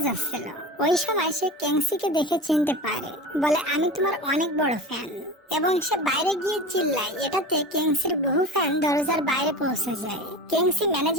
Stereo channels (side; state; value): both; normal; correlation 0.31